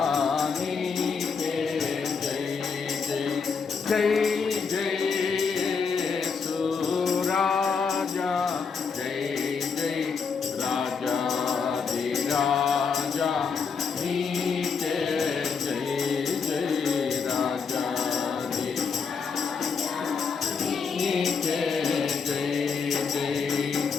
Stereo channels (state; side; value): quieter; right; 5.6 dB